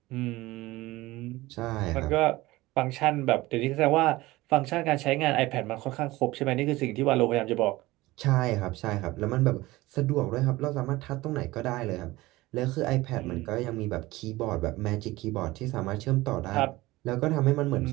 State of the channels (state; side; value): quieter; left; 19.2 dB